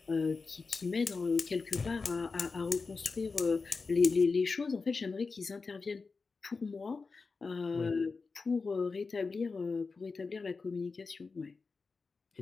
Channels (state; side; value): quieter; right; 4.4 dB